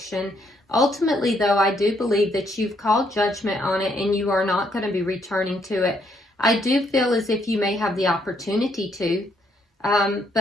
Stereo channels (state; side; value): normal; both; correlation 0.71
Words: Ultimately, though, I do believe that you've called judgment on it and you are not going to be returning to it. I do feel as if you may have the opportunity to.